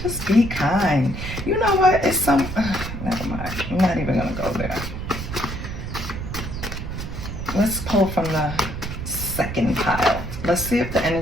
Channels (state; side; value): noise; right; rumble, 7 dB below the sound